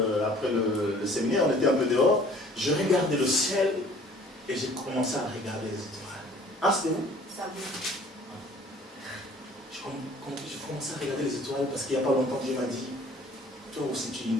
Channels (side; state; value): both; normal; correlation 0.52